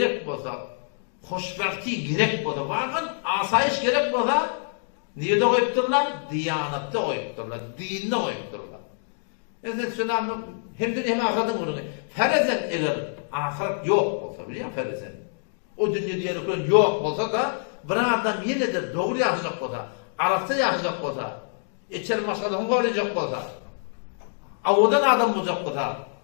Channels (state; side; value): silent; right; digital silence